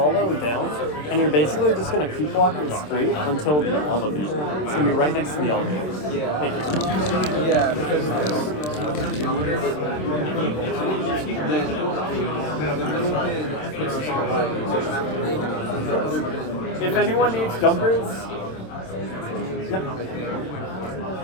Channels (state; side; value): late; right; 27 ms